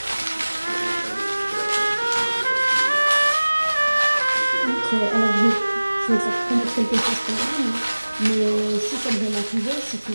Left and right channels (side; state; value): both; inverted; correlation -1.00